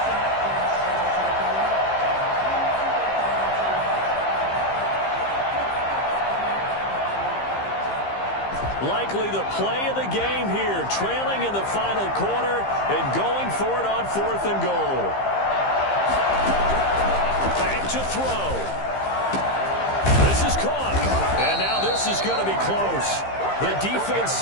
Likely the play of the game here, trailing in the final quarter and going for it on 4th and goal. Back to throw. This is caught. And now this is going to be close. The defense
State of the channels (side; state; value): right; late; 15 ms